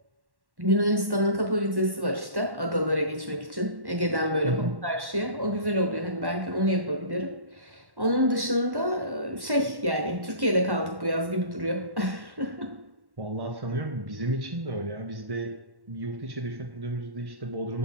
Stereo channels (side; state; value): left; late; 1.1 ms